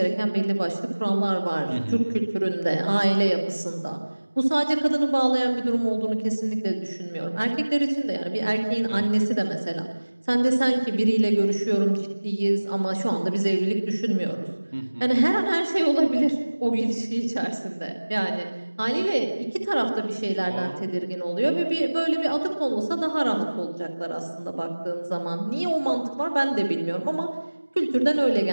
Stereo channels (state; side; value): inverted; both; correlation -1.00